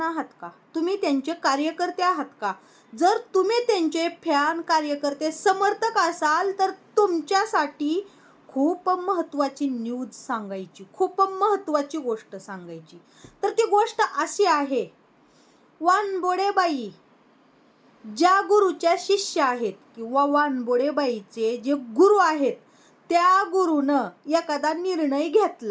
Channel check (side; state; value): both; identical; correlation 1.00